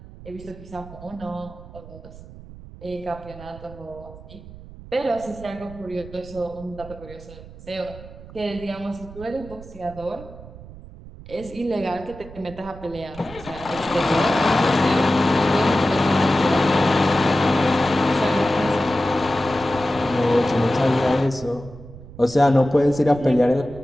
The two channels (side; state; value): right; noise; rumble, 17 dB below the sound